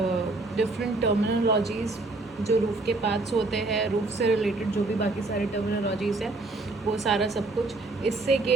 डिफरेंट टर्मिनोलॉजीज़, जो रूफ़ के पार्ट्स होते हैं, रूफ़ से रिलेटेड जो भी बाकी सारे टर्मिनोलॉजीज़ हैं, वो सारा सब कुछ। इससे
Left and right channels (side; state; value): left; quieter; 3.2 dB